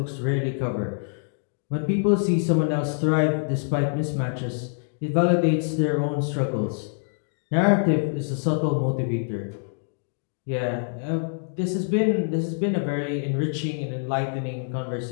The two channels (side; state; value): right; silent; digital silence